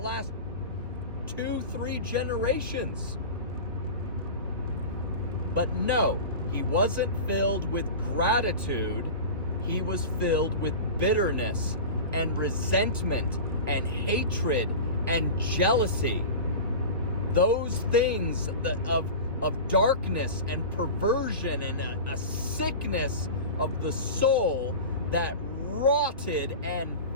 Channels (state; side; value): inverted; both; correlation -0.31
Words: 2-3 generations. But no, he wasn't filled with gratitude. He was filled with bitterness and resentment and hatred and jealousy. Those things of darkness and perversion and a sickness of the soul that rotted and